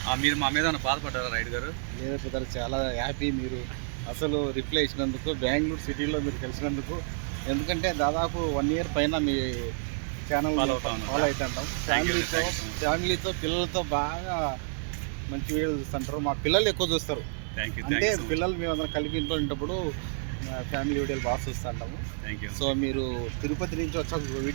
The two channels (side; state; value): left; silent; digital silence